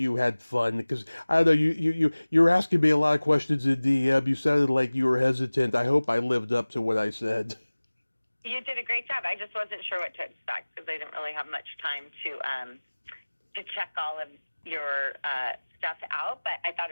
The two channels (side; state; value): both; inverted; correlation -1.00